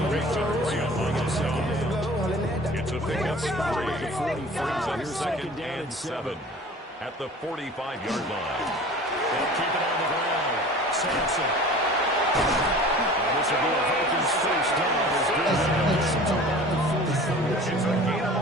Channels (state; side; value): normal; both; correlation 0.42